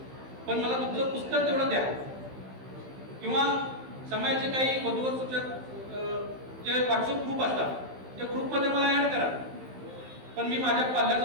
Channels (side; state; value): left; late; 15 ms